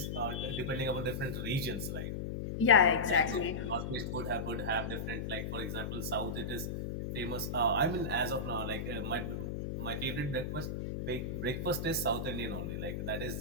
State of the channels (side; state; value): left; noise; hum, 4 dB below the sound